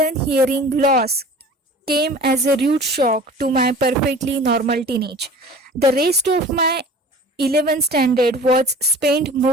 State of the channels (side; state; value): both; normal; correlation 0.43